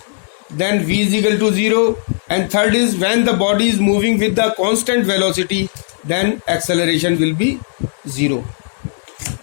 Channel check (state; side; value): silent; right; digital silence